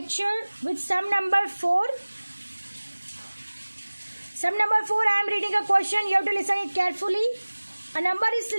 with sum number 4. Sum number 4, I am reading a question. You have to listen it carefully. A number is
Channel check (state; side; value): inverted; both; correlation -1.00